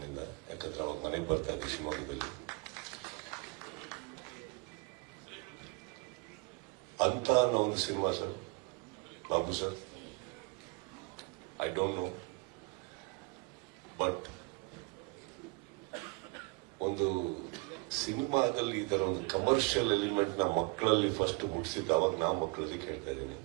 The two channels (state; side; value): quieter; left; 29.6 dB